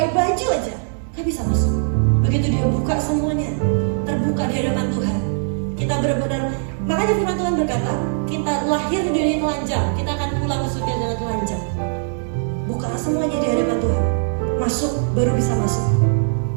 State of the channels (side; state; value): left; silent; digital silence